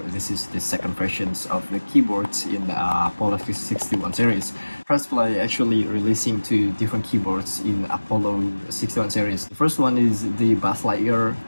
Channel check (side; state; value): both; inverted; correlation -1.00